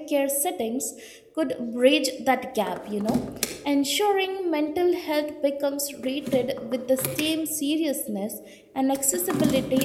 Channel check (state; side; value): identical; both; correlation 1.00